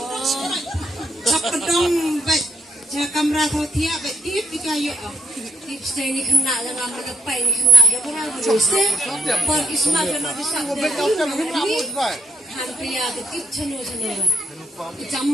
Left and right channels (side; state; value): both; normal; correlation 0.75